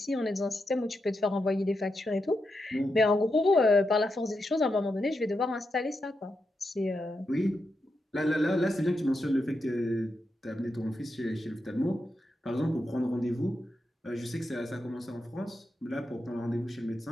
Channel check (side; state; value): both; normal; correlation 0.86